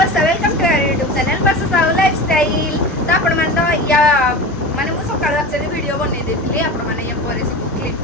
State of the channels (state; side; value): normal; both; correlation 0.30